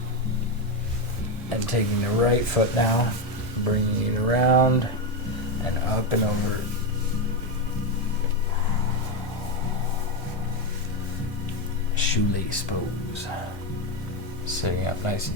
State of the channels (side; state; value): both; normal; correlation 0.09